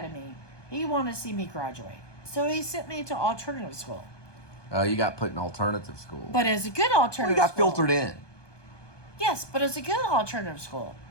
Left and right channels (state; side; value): late; right; 1.2 ms